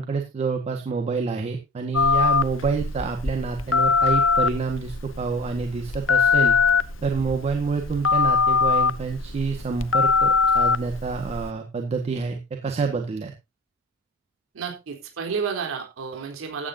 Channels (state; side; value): normal; both; correlation 0.41